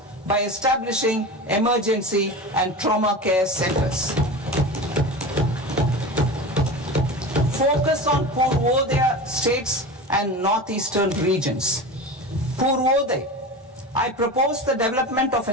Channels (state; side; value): normal; both; correlation 0.29